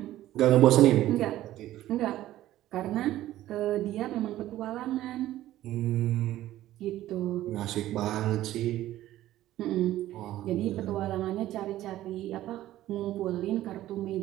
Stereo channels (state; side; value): quieter; left; 14.3 dB